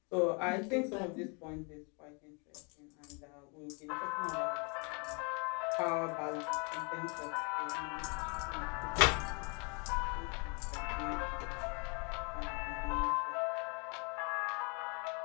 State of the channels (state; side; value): quieter; right; 34.1 dB